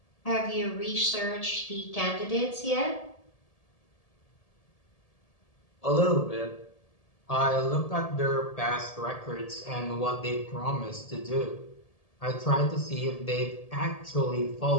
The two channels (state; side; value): late; right; 1.7 ms